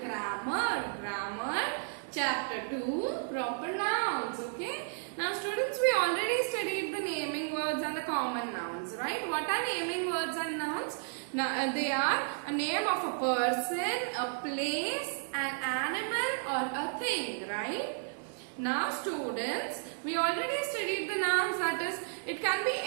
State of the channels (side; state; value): left; silent; digital silence